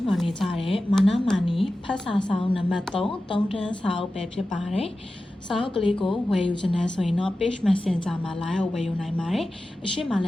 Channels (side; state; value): both; normal; correlation 0.94